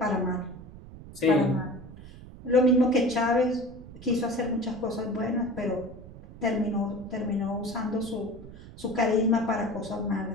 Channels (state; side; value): noise; right; rumble, 16 dB below the sound